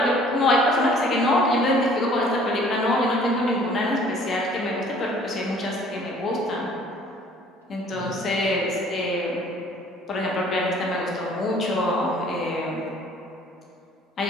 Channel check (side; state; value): both; normal; correlation 0.54